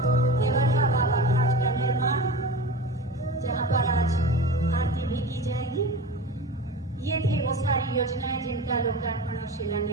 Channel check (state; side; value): normal; both; correlation 0.32